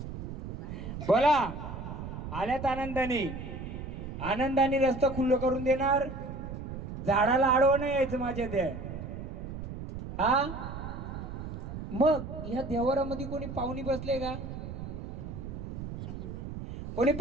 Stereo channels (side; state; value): right; noise; rumble, 8 dB below the sound